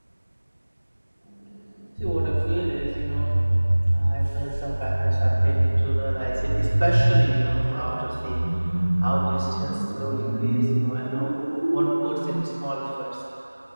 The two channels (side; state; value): both; inverted; correlation -1.00